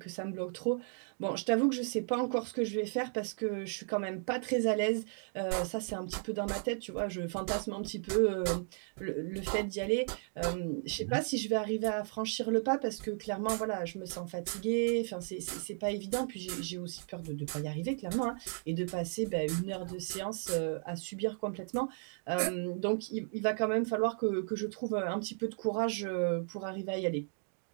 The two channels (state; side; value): silent; left; 55 dB below the other